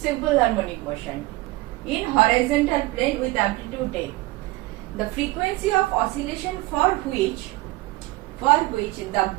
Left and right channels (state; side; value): quieter; left; 20.0 dB